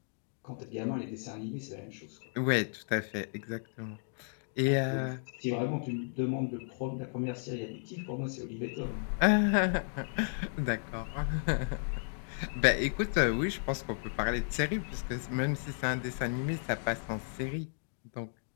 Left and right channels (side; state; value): right; silent; digital silence